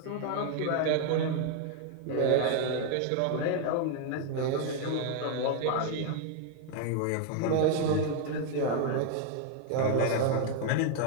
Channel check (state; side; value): different; both; correlation 0.01